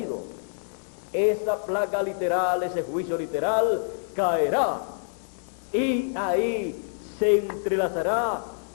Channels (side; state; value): right; silent; digital silence